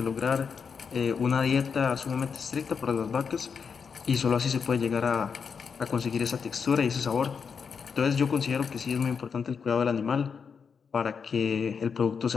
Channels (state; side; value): quieter; right; 6.1 dB